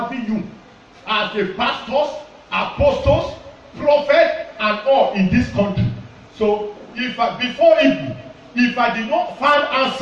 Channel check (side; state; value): both; identical; correlation 1.00